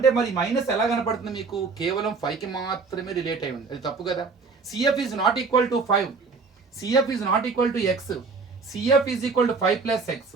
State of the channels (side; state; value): left; quieter; 4.6 dB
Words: మరి మైనస్ ఎలా కనపడుతుంది మీకు? కేవలం 5కి మాత్రమే రిలేట్ అయి ఉంది, అది తప్పు కదా. CF is not equal to 5, CF is not equal to X, CF is equal to 5 plus x.